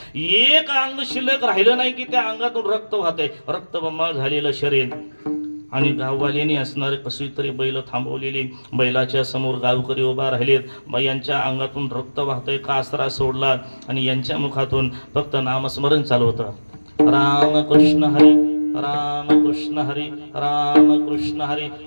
एक अंग शिल्लक राहिलं नाही की त्या अंगातून रक्त वाहतय. रक्तबंबाळ झालेलं शरीर. आणि गाववाल्यांनी असणारे कशी तरी बैल थांबवलेली. बैलाच्या समोर गावकरी उभा राहिलेत. यांच्या अंगातून रक्त वाहतय. कासरा सोडला आणि यांच्या मुखातून फक्त नामस्मरण चालू होतं. रामकृष्ण हरी, रामकृष्ण हरी, रामकृष्ण हरी.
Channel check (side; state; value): both; inverted; correlation -1.00